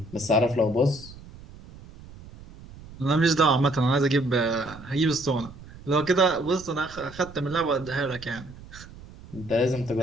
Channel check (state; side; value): noise; right; rumble, 18 dB below the sound